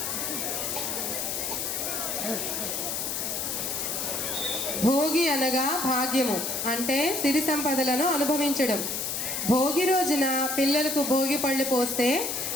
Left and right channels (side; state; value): left; noise; hiss, 2 dB below the sound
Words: భోగి అనగా భాగ్యము, అంటే సిరి సంపదలను అనుభవించడం. భోగి రోజున పిల్లలకు భోగి పళ్ళు పోస్తే